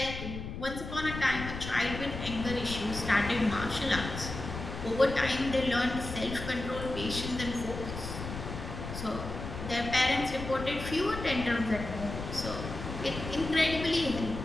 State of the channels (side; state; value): left; noise; rumble, 8 dB below the sound